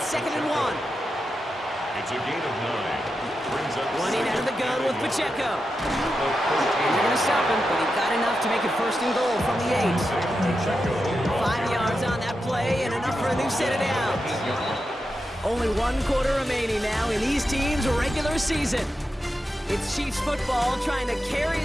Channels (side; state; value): both; normal; correlation 0.89